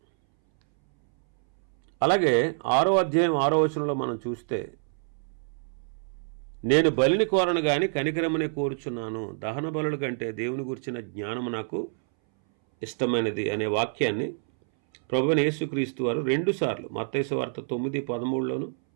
అలాగే 6వ అధ్యాయం 6వ వచనంలో మనం చూస్తే, నేను బలిని కోరను గాని కనికరమునే కోరుచున్నాను, దహన బలుల కంటే దేవుని గురించిన జ్ఞానము నాకు ఇష్టమైనది అనే వాక్యాన్ని ప్రభువైన యేసుక్రీస్తు వారు 2 సార్లు మత్తయి సువార్త 9:13లోను,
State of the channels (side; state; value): left; silent; 60 dB below the other